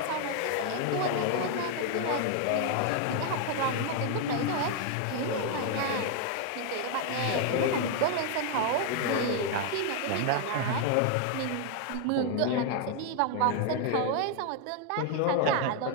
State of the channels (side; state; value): both; different; correlation 0.01